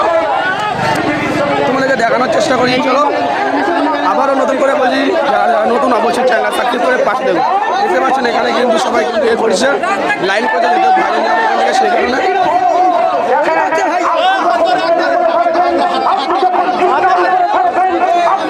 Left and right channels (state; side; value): identical; both; correlation 1.00